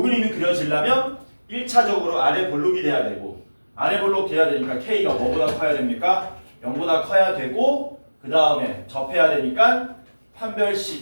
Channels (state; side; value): inverted; both; correlation -1.00